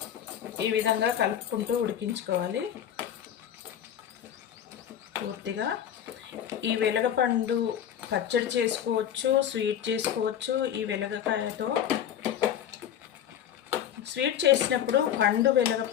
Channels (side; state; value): right; quieter; 9.9 dB